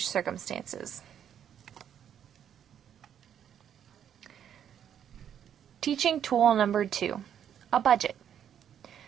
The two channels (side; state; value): left; quieter; 9.3 dB